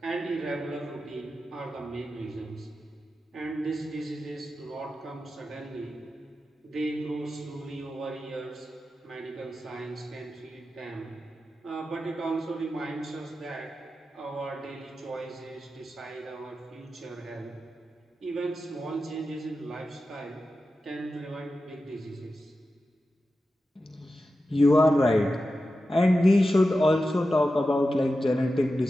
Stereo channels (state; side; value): normal; both; correlation 0.92